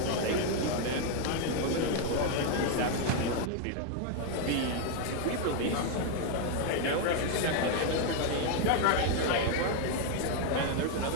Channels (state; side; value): different; both; correlation 0.00